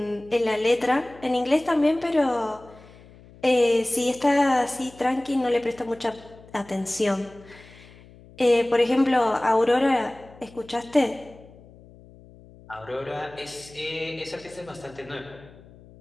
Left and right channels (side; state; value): left; noise; hum, 23 dB below the sound